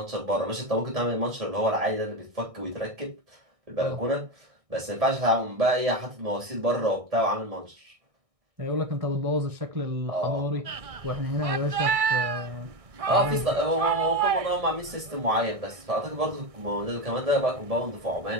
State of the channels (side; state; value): left; late; 1.6 ms